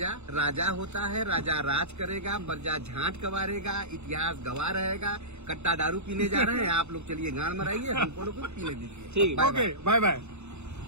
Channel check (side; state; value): left; late; 0.82 ms